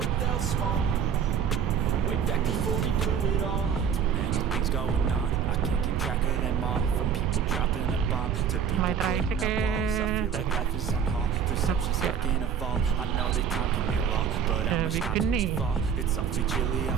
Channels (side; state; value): left; quieter; 7.7 dB